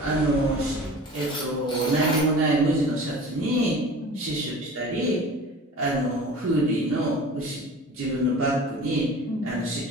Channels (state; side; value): normal; both; correlation 0.40